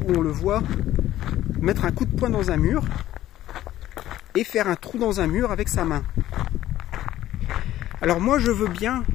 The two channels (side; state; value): right; quieter; 13.7 dB